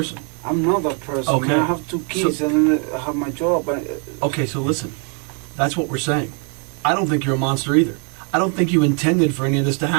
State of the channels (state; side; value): quieter; left; 39.4 dB